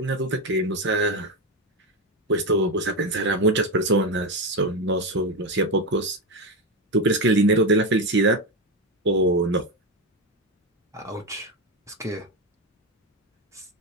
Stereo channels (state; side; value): normal; both; correlation 0.12